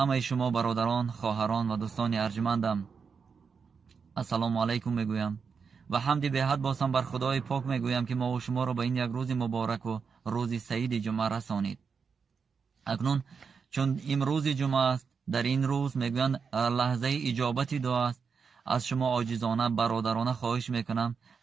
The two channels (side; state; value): left; quieter; 5.7 dB